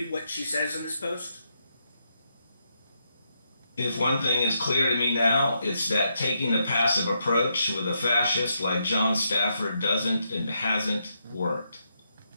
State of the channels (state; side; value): inverted; both; correlation -0.80